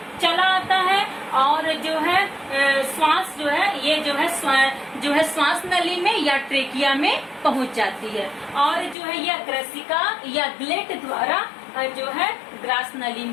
चला आता है और जो है श्वास जो है ये जो है श्वास नली में या ट्रेकिया में पहुंच जाती है। और जो है यह ग्रसिका या ग्लेट द्वारा जो है ग्रास नली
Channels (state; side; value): drops out; right; at 9.0 s